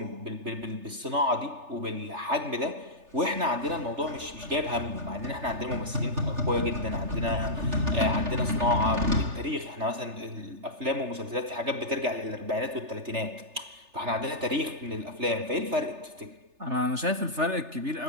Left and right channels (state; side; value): late; left; 3.3 ms